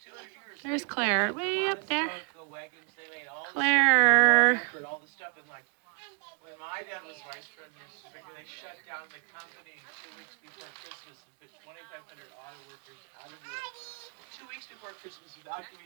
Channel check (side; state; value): left; quieter; 34.9 dB